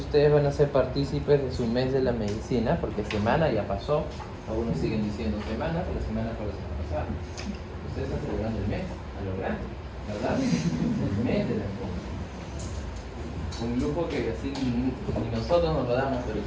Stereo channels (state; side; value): identical; both; correlation 1.00